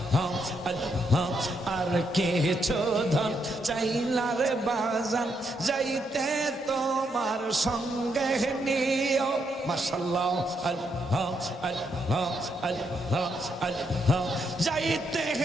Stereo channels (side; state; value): both; normal; correlation 0.78